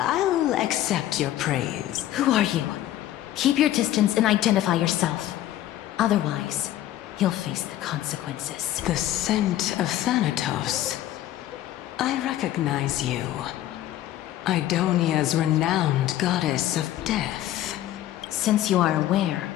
accept your praise. Who are you? Keep your distance and identify yourself. Otherwise, you'll face the consequences. The scent of Thanatos. I recognize you. Idonia's renowned goddess of death. Since you are aware,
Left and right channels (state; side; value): quieter; right; 13.4 dB